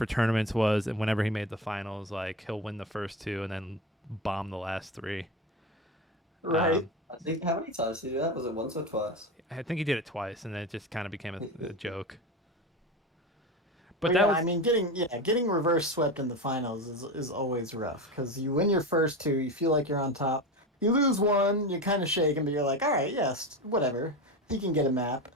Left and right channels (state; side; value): normal; both; correlation 0.23